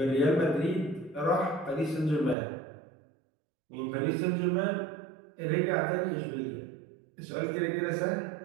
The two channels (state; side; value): drops out; left; at 2.4 s